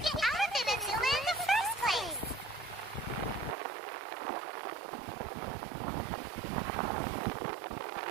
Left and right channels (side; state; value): left; drops out; at 3.6 s